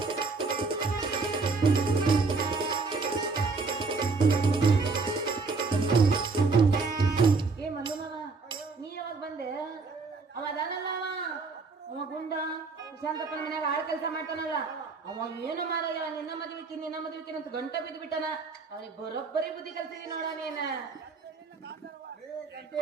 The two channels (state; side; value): quieter; left; 4.2 dB